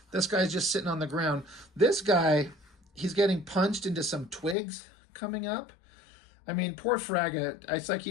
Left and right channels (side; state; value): right; drops out; at 4.5 s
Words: This guy's just sitting on the ground. This guy, he's getting punched into some twigs coming up. I mean, poor Fraga, it's like